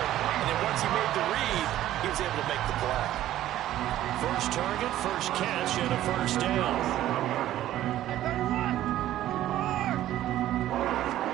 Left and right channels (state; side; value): quieter; left; 13.4 dB